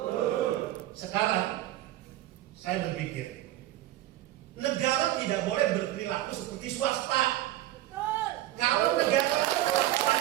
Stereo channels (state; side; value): quieter; left; 14.9 dB